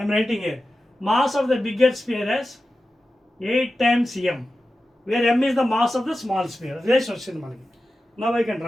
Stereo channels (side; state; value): both; normal; correlation 0.93